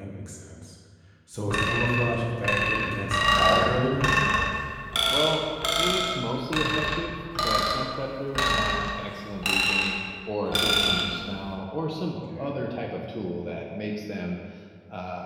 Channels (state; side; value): identical; both; correlation 1.00